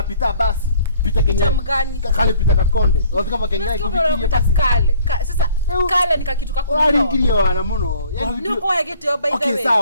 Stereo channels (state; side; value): inverted; both; correlation -0.56